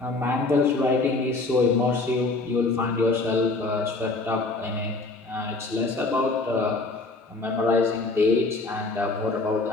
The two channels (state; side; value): quieter; right; 3.4 dB